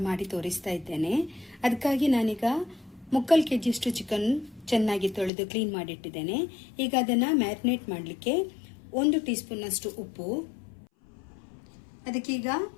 ಮಾಡಿ ತೋರಿಸ್ತಾ ಇದ್ದೇನೆ. ಅದಕ್ಕಾಗಿ ನಾನೀಗ 3 kg ಚಿಕನ್ ಚೆನ್ನಾಗಿ ತೊಳೆದು ಕ್ಲೀನ್ ಮಾಡಿಟ್ಟಿದ್ದೇನೆ. ಈಗ ಅದನ್ನು ಮ್ಯಾರಿನೇಟ್ ಮಾಡಲಿಕ್ಕೆ 1 ಟೀ ಸ್ಪೂನ್ ಅಷ್ಟು ಉಪ್ಪು, ಅದಕ್ಕೀಗ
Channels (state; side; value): drops out; right; at 5.3 s